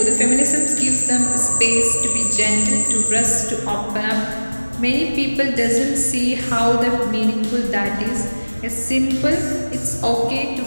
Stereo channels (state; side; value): inverted; both; correlation -1.00